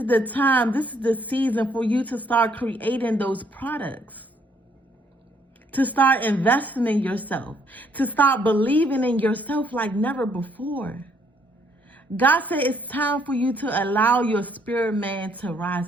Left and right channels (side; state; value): both; normal; correlation 0.68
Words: the time. This is the season for you to start creating those products. To start investing in yourself. To start believing in yourself like never before. God said it's time for you to allow your spirit man to rise